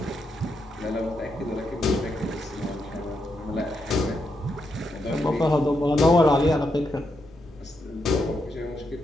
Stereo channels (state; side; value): normal; both; correlation 0.82